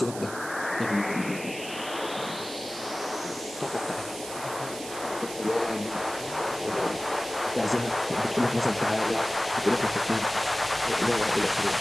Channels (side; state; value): right; noise; hiss, 12 dB below the sound